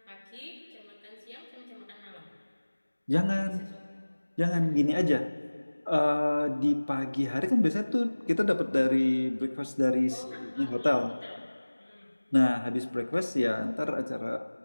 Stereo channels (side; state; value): both; inverted; correlation -1.00